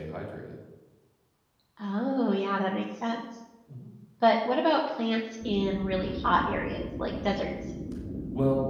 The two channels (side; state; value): both; identical; correlation 1.00